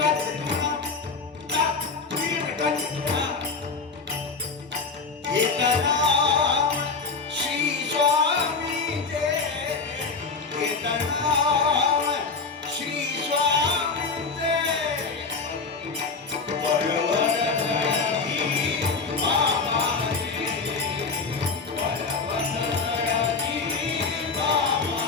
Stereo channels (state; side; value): quieter; right; 4.5 dB